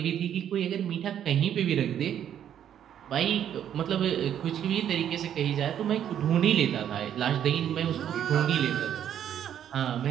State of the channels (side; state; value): left; quieter; 9.9 dB